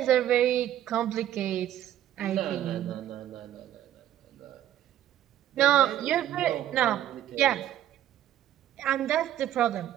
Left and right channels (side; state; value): left; quieter; 11.9 dB